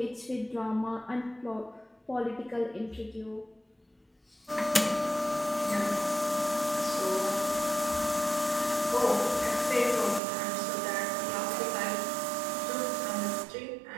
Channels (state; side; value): drops out; left; at 10.2 s